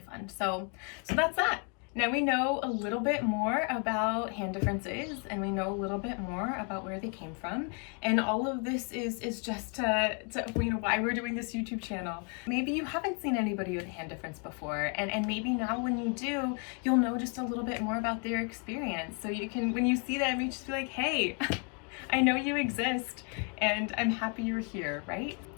fun. So that's that. Now we know a little bit more about hand differences, and we know a little bit more about where they came from, and all of this is just to you know, why we're doing this YouTube channel. Maybe you haven't seen anybody with a hand difference before, and maybe now when you do, you'll know just a little bit more about their experience, so you can, when you see them, you just be like, hey, I know you exist, and I'm happy you're here, right?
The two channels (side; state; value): right; quieter; 37.6 dB